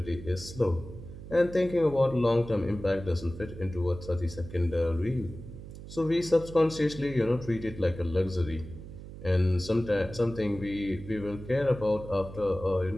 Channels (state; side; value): noise; right; hum, 13 dB below the sound